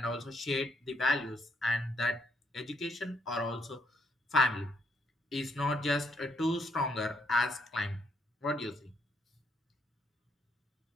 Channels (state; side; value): normal; both; correlation 0.73